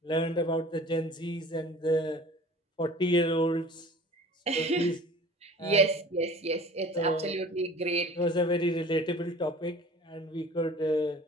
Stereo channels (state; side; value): normal; both; correlation 0.44